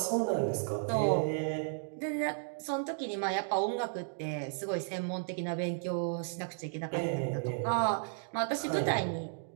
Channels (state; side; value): silent; left; digital silence